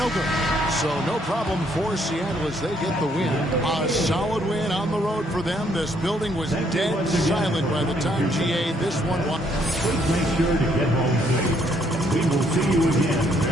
good. So no problem for Seattle as they get the win. A solid win on the road for them. This building was dead silent by the time GA this one won. Please make sure to get home safe. We will see you again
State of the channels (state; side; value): normal; both; correlation 0.69